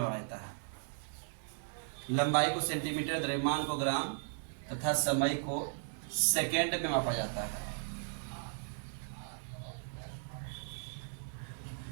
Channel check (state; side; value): silent; left; digital silence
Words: है। लंबाई को सेंटीमीटर, द्रव्यमान को ग्राम तथा समय को सेकेंड में मापा जाता है।